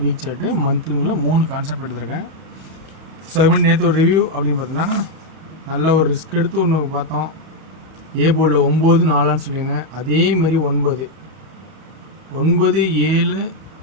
வீக் சார்ட்டு, மந்த்துங்களில் 3 கான்செப்ட் எடுத்திருக்கேன். ஸோ அது மாதிரி நேற்று ஒரு ரிவ்யூ அப்படின்னு பார்த்தோன்னா நல்ல ஒரு ரிஸ்க் எடுத்து ஒன்று பார்த்தோம். ஏ போர்டில் 9 4 சொல்லியிருந்தேன். அதே மாதிரி 9 7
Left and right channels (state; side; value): late; left; 31 ms